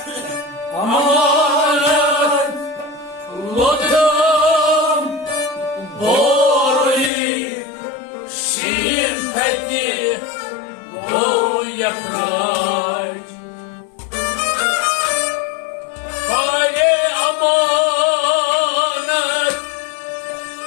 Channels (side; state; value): right; drops out; at 7.1 s